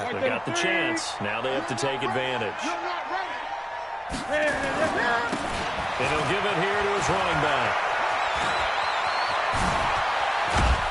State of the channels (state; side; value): identical; both; correlation 1.00